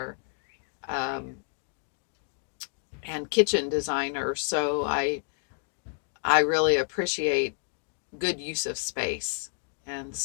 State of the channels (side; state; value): right; silent; 58 dB below the other